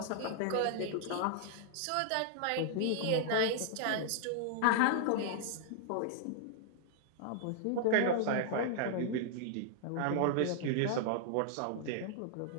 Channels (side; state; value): both; different; correlation -0.01